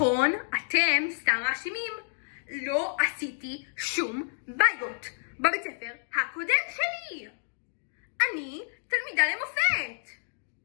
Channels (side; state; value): right; silent; digital silence